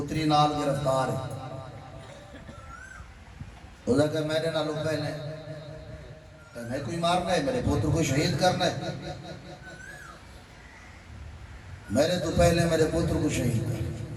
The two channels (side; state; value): both; identical; correlation 1.00